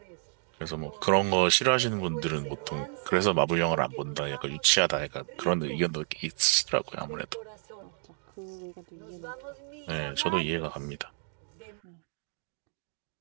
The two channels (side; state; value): left; silent; 56 dB below the other